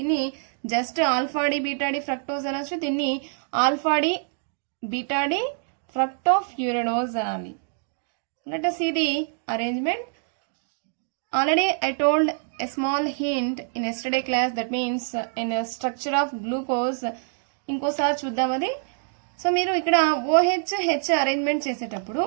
just alpha D beta D fructose అనొచ్చు, దీన్ని alpha D beta D fructofuranose అనాలి. Let us see the arrangement. Already I told a small hint in yesterday class, that means in a structure of glucose. ఇంకోసారి చూద్దాం అది. So మీరు ఇక్కడ OH arrangement చేసేటప్పుడు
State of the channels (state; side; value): silent; left; digital silence